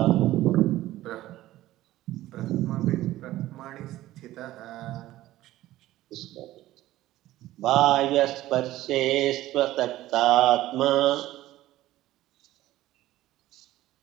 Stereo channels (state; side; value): quieter; left; 15.4 dB